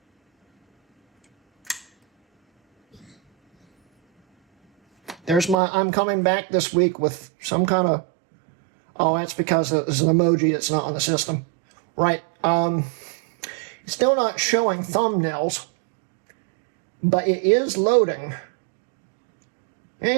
There's my, I'm coming back this week with some kind of, oh, that's because it's an emoji that's not on the system. Right. It's still not showing thumbnails, but it is loading. It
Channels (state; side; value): drops out; left; at 5.6 s